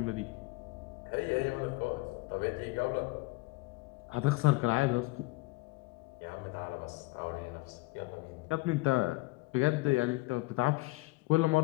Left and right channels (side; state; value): right; quieter; 22.6 dB